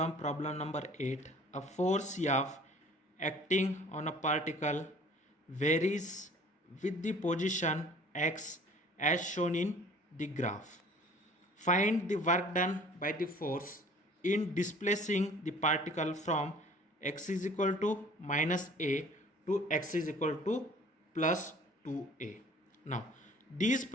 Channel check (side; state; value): both; normal; correlation 0.50